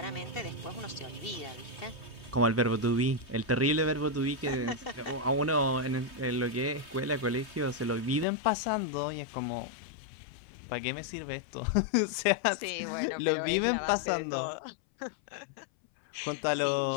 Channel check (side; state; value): right; drops out; at 8.2 s